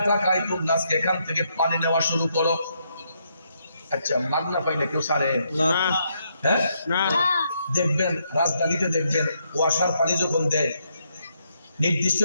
টাকায় তোমরা আজকে এখান থেকে পানি নেওয়া শুরু করো। আচ্ছা, মাগনা পাইলে কেউ সারে না? হ্যাঁ না। দেখবেন রাজধানীতে দেখবেন ওয়াসার পানি যখন দেয় নির্দিষ্ট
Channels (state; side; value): inverted; both; correlation -0.77